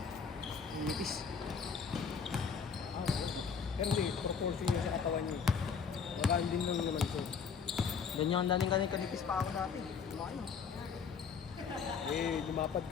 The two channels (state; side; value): quieter; right; 6.1 dB